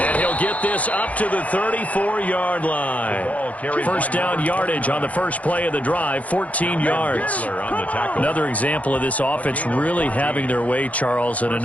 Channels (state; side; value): late; right; 0.068 ms